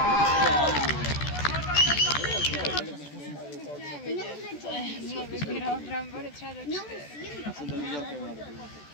Jsme vybíral brambory třeba do 4. Já jsem to viděl, Kevina.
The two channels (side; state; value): right; late; 14 ms